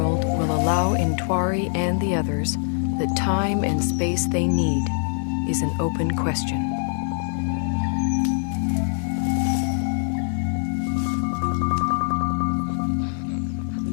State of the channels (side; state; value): right; silent; 56 dB below the other